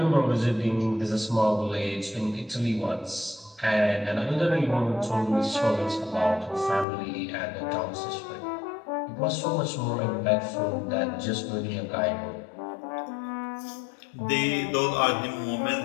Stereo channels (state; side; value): drops out; right; at 6.9 s